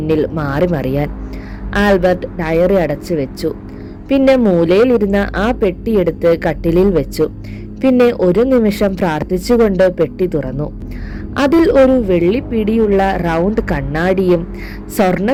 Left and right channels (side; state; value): both; identical; correlation 1.00